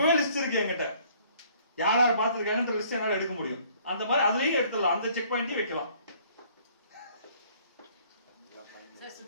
லிஸ்ட் இருக்கு என்கிட்ட, யார் யார் பார்த்திருக்காங்கன்ற லிஸ்ட் என்னால எடுக்க முடியும். அந்த மாதிரி அதுலயும் எடுத்துடலாம், அந்த செக் பாயிண்டையும் வைக்கலாம்.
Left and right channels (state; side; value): inverted; both; correlation -0.59